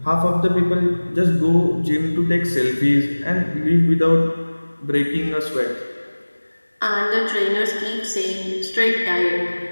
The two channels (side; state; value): both; inverted; correlation -1.00